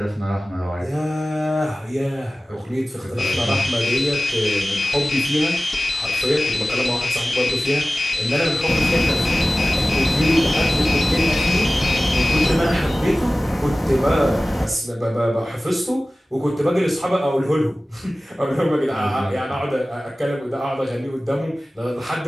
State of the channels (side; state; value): both; normal; correlation 0.96